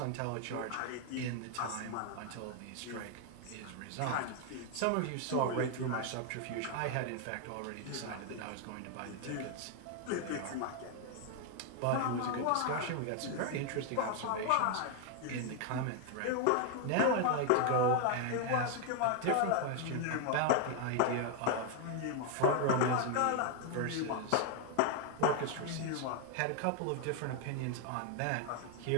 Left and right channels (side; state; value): both; different; correlation 0.00